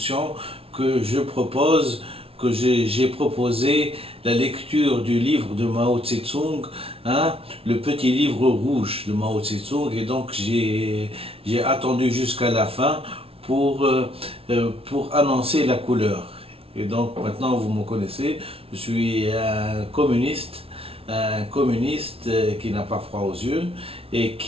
que j'ai proposé la lecture du livre de Mao Tse-tung, hein, le petit livre rouge de Mao Tse-tung, et donc j'ai attendu jusqu'à la fin pour annoncer la couleur. Et donc maintenant vous me connaissez, je suis un communiste qui n'a pas froid aux yeux et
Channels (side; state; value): left; late; 0.27 ms